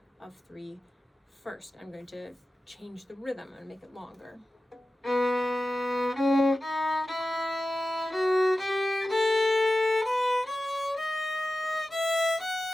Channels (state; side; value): normal; both; correlation 0.94